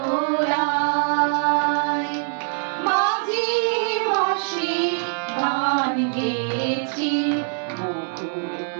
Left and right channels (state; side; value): silent; left; digital silence